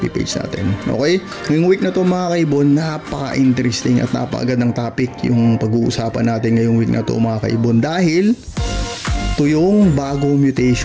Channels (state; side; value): identical; both; correlation 1.00